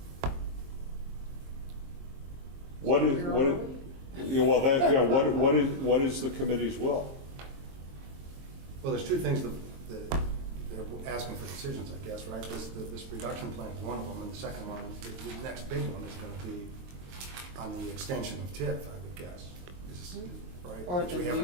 What is, yeah, well, that, yeah, what is the committee's will? Well, there's two things that they're asking for decisions, I guess, right? This reduction plan is one of them, and the second one, the next big one is going to be on the extension of TIF, I would guess. Right? Or Which the we haven't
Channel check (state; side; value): late; left; 22 ms